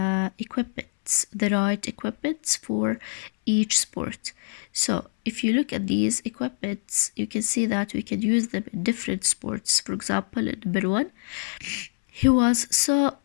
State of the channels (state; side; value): silent; right; 62 dB below the other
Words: right equipments for each sport. So if you look at these equipments, you can see that we can use them in different sports. For example, in number 1, he was so